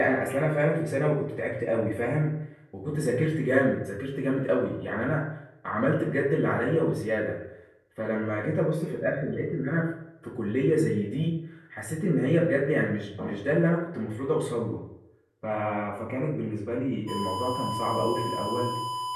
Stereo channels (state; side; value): identical; both; correlation 1.00